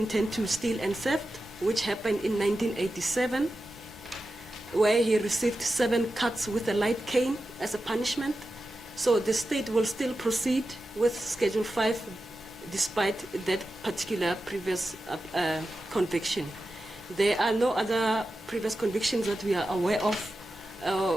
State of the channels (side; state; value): both; normal; correlation 0.92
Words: to steal and theft, which happened in 1987, where he received 7 cuts with a light cane as a punishment. So the state will still proceed with Schedule 5 despite that particular previous conviction. There are no other previous convictions that we are aware of.